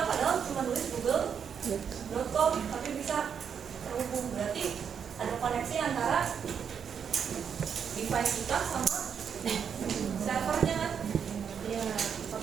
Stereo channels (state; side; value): quieter; left; 7.4 dB